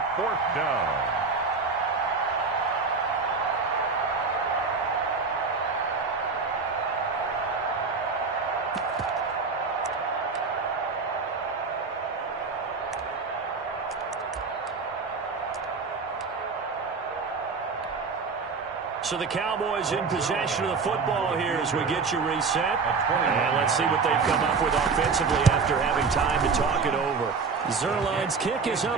4th down. So the Cowboys in possession of the football here as we get you reset. And let's see what they've come up with offensively after having time to talk it over. Zerline's kick is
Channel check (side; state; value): left; quieter; 4.8 dB